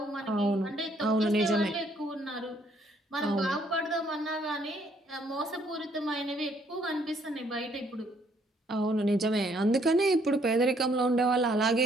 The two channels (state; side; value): normal; both; correlation 0.67